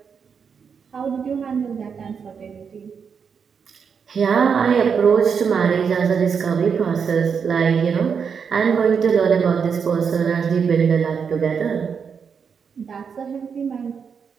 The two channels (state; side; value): quieter; left; 6.4 dB